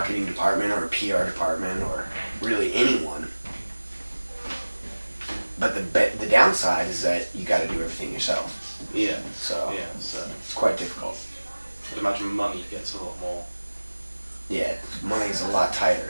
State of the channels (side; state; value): both; inverted; correlation -1.00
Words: department or a PR department or really anyone. But the downside is that you got to do everything yourself. Yeah. So yeah, it's quite difficult. I'd imagine money gets a lot more. Yeah, money's a lot